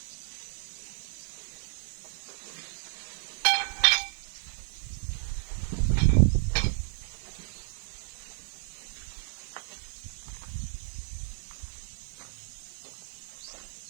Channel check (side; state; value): left; silent; digital silence